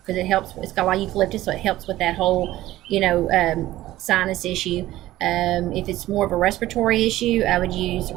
it helps. It's got a lot of eucalyptus, so it helps with that whole, sinus issue. If it's more of a respiratory issue, I would use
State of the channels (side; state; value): left; quieter; 15.5 dB